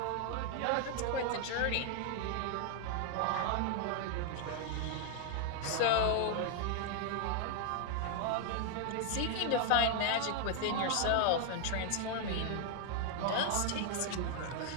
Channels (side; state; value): both; different; correlation 0.00